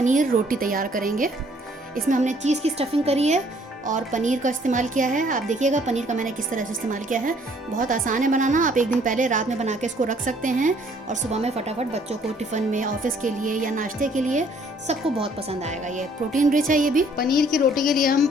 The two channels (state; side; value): normal; both; correlation 0.61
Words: रोटी तैयार करेंगे। इसमें हमने चीज़ की स्टफिंग करी है और पनीर का इस्तेमाल किया है। आप देखिएगा पनीर का मैंने किस तरह से इस्तेमाल किया है। बहुत आसान है बनाना। आप एक दिन पहले रात में बना के इसको रख सकते हैं और सुबह में फटाफट बच्चों को टिफ़िन में, ऑफिस के लिए या नाश्ते के लिए सबको बहुत पसंद आएगा। ये प्रोटीन रिच है। ये भी पनीर की रोटी के लिए